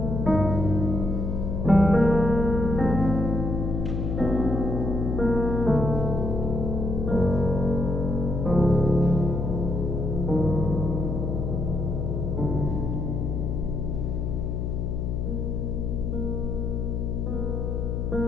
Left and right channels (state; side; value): noise; left; hum, 1 dB below the sound